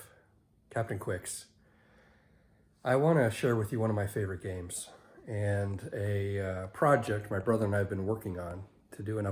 Captain Quicks. I want to share with you one of my favorite games and a project my brother and I have been working on to do an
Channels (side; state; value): both; identical; correlation 1.00